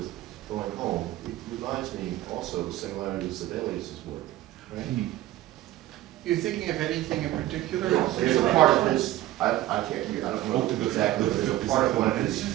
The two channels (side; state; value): left; quieter; 15.3 dB